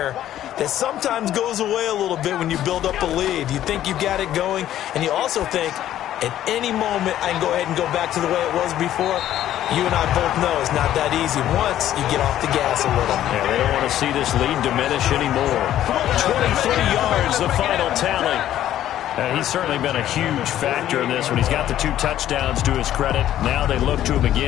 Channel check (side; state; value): right; quieter; 12.2 dB